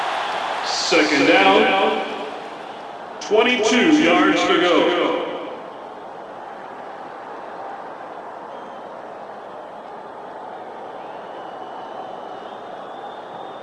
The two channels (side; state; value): both; identical; correlation 1.00